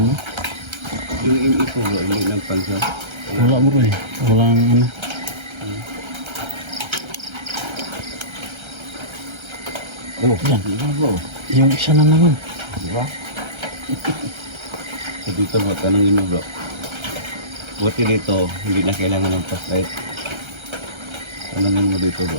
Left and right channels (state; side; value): late; left; 1.3 ms